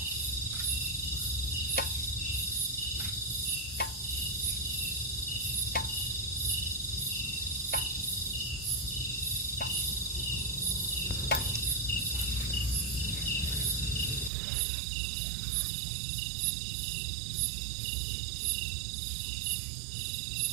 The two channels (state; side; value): drops out; left; at 14.3 s